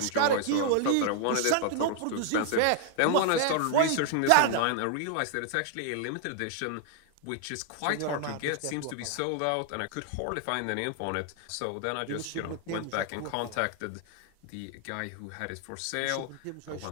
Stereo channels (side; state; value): both; different; correlation 0.00